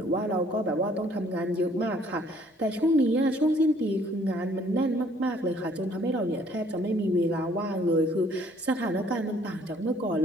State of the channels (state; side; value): normal; both; correlation 0.61